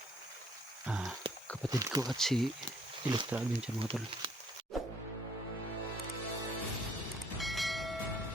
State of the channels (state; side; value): normal; both; correlation 0.63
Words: kapatid ko at si Electra Adventure mga tol.